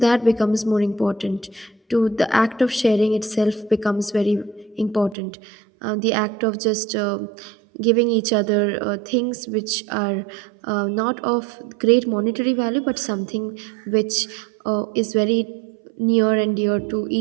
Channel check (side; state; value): left; drops out; at 5.2 s